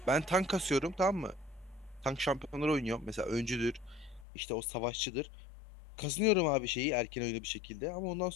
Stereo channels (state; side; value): drops out; right; at 4.2 s